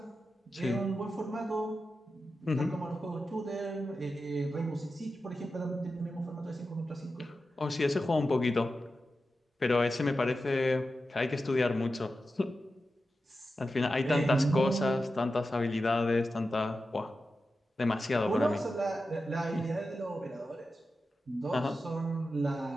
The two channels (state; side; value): normal; both; correlation 0.91